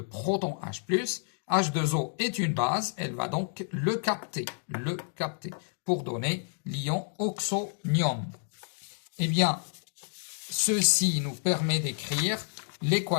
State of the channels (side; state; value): right; silent; digital silence